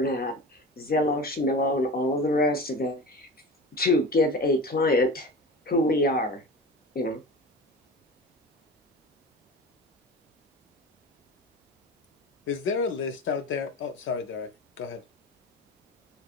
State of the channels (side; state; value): both; normal; correlation 0.33